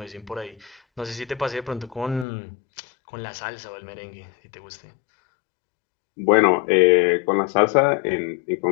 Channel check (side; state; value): right; drops out; at 2.2 s